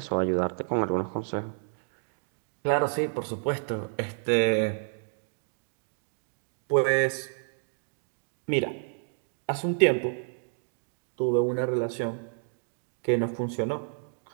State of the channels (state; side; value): silent; left; digital silence